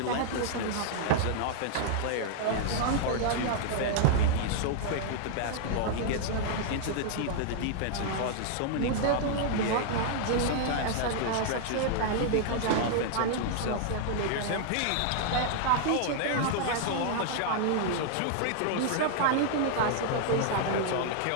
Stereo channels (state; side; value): different; both; correlation -0.01